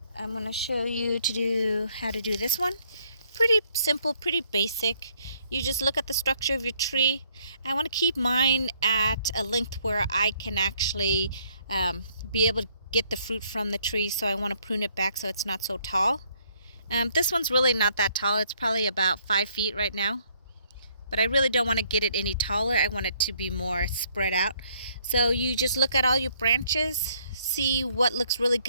I'm going to show you how to do this one. Pretty simple, pretty basic. You just look at the structure of your tree. I want to keep mine at a length where I can actually be able to get the fruit from the tree, so I want to prune it back so it's not so tall. This one's really not that tall. It's probably about 5 feet right now, but I really don't want to get it any taller. I want it to be more spread out. So you just look at all your branches, see what looks really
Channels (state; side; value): inverted; both; correlation -0.67